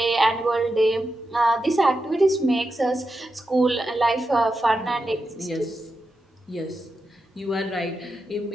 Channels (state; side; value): normal; both; correlation 0.88